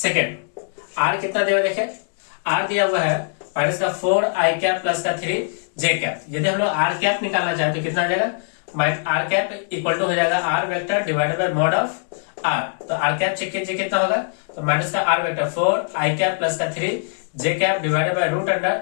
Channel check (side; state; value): right; silent; digital silence